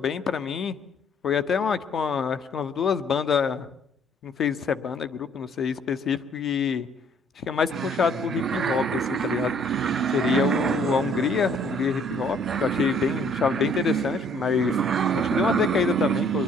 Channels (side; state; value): both; normal; correlation 0.61